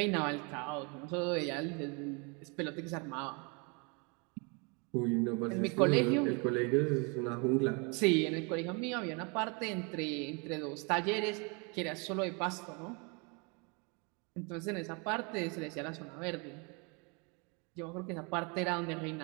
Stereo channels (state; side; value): quieter; left; 32.2 dB